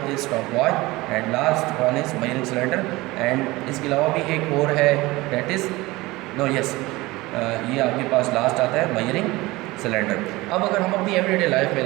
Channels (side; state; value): left; quieter; 20.6 dB